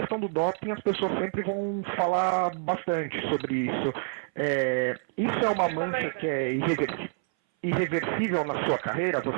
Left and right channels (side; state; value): left; silent; 59 dB below the other